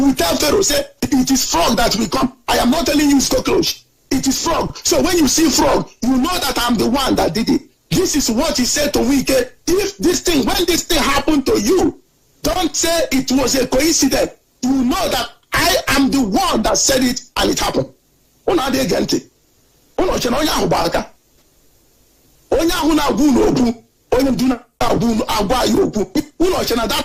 tell Pharaoh, say, it is frog that will come. I am not telling you it's cockroach. it is frog. So when you see frog, you know that I'm the one that did it. This is what he said to Wike. If this thing, when this thing happened to you, don't say it was a coincidence. You know that I am the one that said it and it happened. Una de gente. Una chena onya hubaka. Onya huna gunu obu. Onya duna gunu agwa yobu. Una chena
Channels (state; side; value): identical; both; correlation 1.00